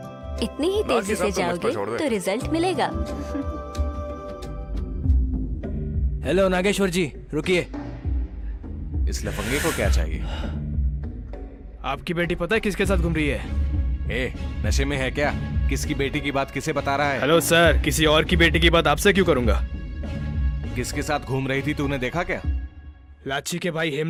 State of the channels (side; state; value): both; identical; correlation 1.00